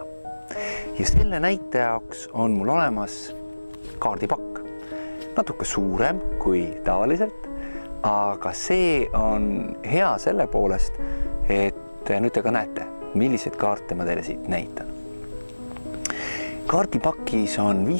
Ja selle näite jaoks on mul olemas kaardipakk. Natuke suurem kui tavaliselt, aga see on hea selle poolest, et nüüd te ka näete, milliseid kaarte ma teile siit näitan. Kaardipakis on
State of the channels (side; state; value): both; inverted; correlation -1.00